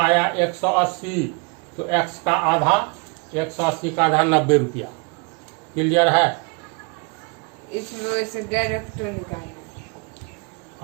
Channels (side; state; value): left; quieter; 31.5 dB